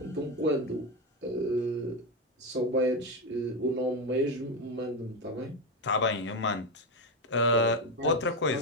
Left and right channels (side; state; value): both; normal; correlation 0.12